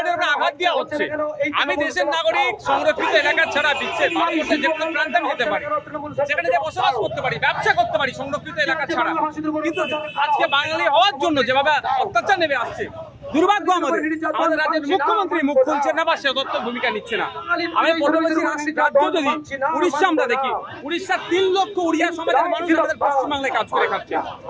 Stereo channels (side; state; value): both; identical; correlation 1.00